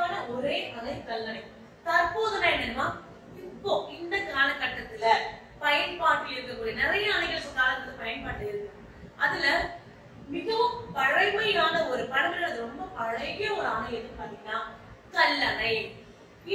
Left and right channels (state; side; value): identical; both; correlation 1.00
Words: ஒரே அணை கல்லணை. தற்போதுனா என்னன்னா, இப்போ இந்த காலகட்டத்துல பயன்பாட்டில் இருக்கக்கூடிய நிறைய அணைகள் காலத்துல பயன்பாட்டில் இருக்கு. அதுல மிகவும் பழமையான ஒரு பழமையான ரொம்ப பழைய ஒரு அணை எதுன்னு பாத்தீங்கன்னா கல்லணை.